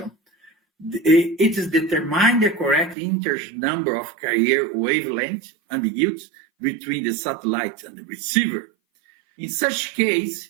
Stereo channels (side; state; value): left; drops out; at 3.0 s